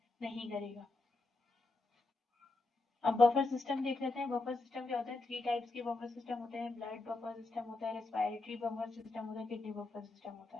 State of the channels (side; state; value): right; quieter; 3.2 dB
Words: नहीं करेगा। अब बफर सिस्टम देख लेते हैं। बफर सिस्टम क्या होता है, 3 टाइप्स के बफर सिस्टम होते हैं। ब्लड बफर सिस्टम होता है, रेस्पिरेटरी बफर सिस्टम होता है, किडनी बफर सिस्टम होता